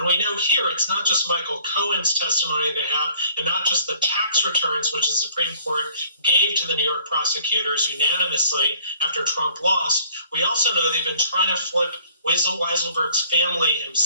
we know here it's not just Michael Cohen's testimony they have, and not just the tax returns, which the Supreme Court gave to the New York prosecutors unanimously after Trump lost. We also know they've been trying to flip Weisselberg's family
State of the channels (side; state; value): both; inverted; correlation -0.55